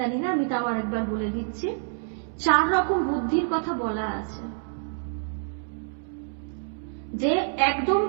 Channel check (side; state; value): left; silent; 60 dB below the other